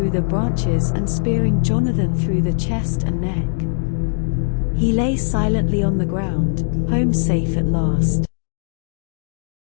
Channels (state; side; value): silent; right; digital silence